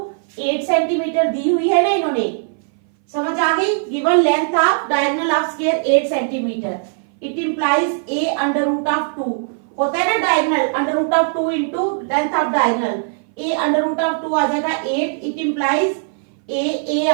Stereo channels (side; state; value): left; silent; 60 dB below the other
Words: 8 centimetre दी हुई है ना इन्होंने, समझ आ गई। Given length of diagonal of square 8 centimetre, it implies a under root of 2, होता है ना diagonal, under root of 2 into length of diagonal, a under root of 2 आ जाएगा 8, इट इंप्लाइज ए